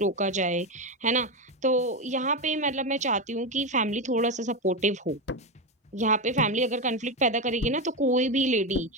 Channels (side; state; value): both; normal; correlation 0.13